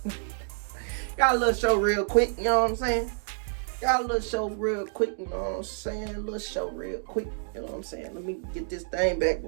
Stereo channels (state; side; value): silent; left; digital silence